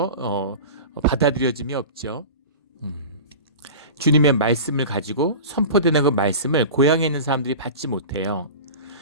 받아들여짐이 없죠. 주님의 말씀을 가지고 선포되는 그 말씀을 고향에 있는 사람들이 받지 못해요.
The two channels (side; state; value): both; inverted; correlation -0.33